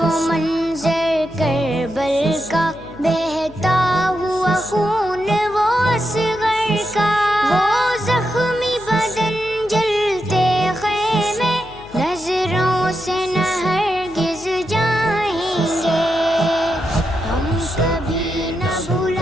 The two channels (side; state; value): left; noise; hum, 20 dB below the sound